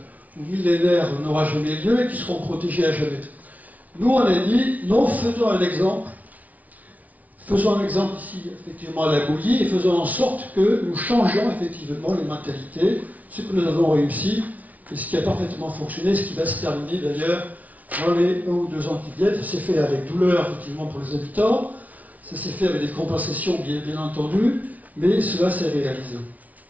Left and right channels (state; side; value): late; left; 0.073 ms